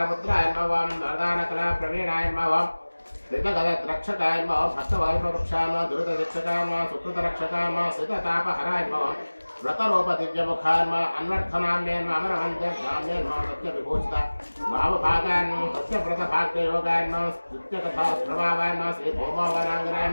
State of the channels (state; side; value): inverted; both; correlation -1.00